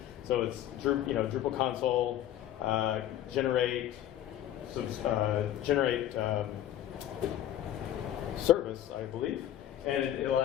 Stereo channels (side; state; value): right; quieter; 11.8 dB